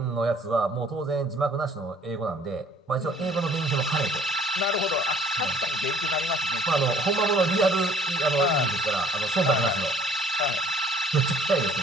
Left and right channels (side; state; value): both; normal; correlation 0.56